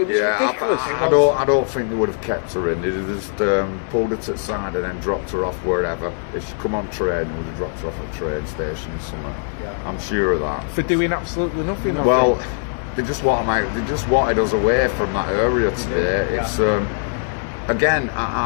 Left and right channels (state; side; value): silent; right; digital silence